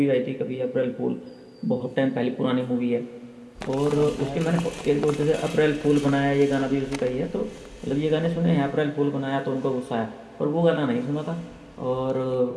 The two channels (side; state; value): both; identical; correlation 1.00